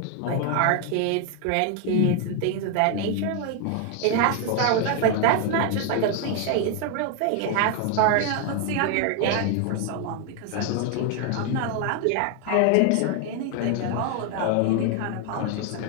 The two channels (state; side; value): different; both; correlation 0.00